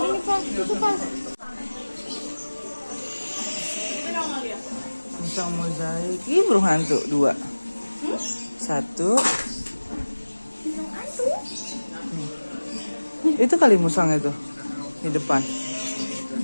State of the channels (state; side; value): inverted; both; correlation -1.00